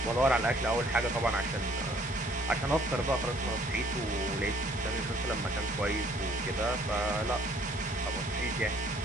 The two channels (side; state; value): both; normal; correlation 0.60